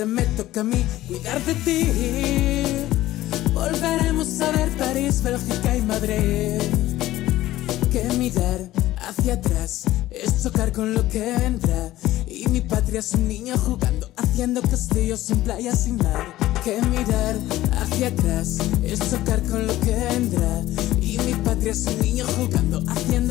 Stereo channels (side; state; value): right; quieter; 15.5 dB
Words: me toca a mí cuidar de ti. Volveremos a ver París, Bélgica y Madrid. Que mirar hacia atrás es chocar con lo que vendrá. Y mi patria es un niño jugando, haciendo castillos en playas sin mar. Que mirar hacia atrás es chocar con lo que vendrá. Y mi patria es un niño jugando,